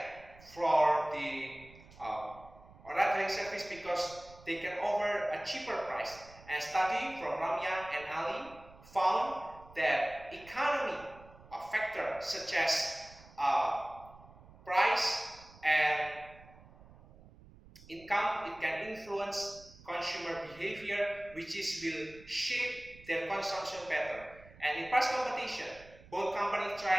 for the ride-hailing service, because they can offer a cheaper price. And study from Ramya and Ali found that economy factor such as price and income, it can influence consumer behavior, which will shape their consumption pattern. And in price competition, both companies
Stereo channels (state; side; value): noise; right; rumble, 22 dB below the sound